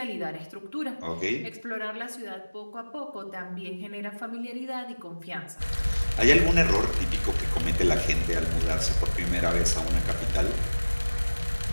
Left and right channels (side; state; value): both; inverted; correlation -1.00